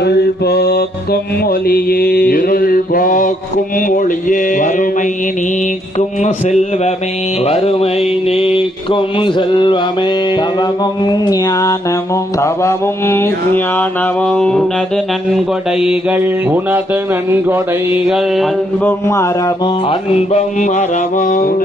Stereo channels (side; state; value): both; normal; correlation 0.72